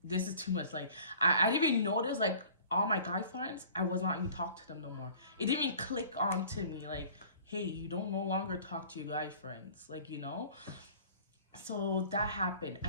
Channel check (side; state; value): both; inverted; correlation -0.48